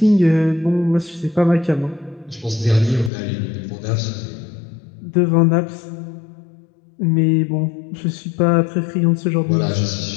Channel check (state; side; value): drops out; right; at 3.1 s